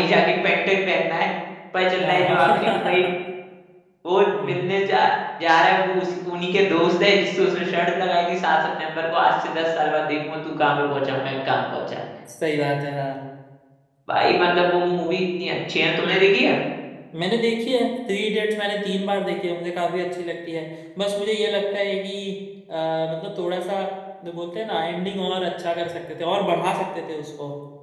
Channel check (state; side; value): identical; both; correlation 1.00